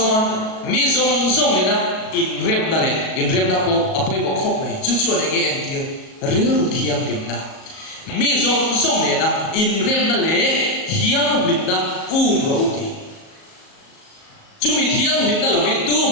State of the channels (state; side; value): late; right; 37 ms